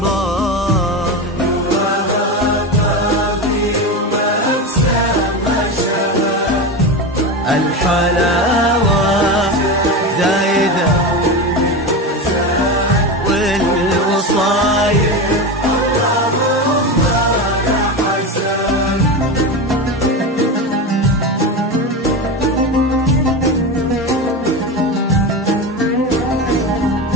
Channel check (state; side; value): normal; both; correlation 0.21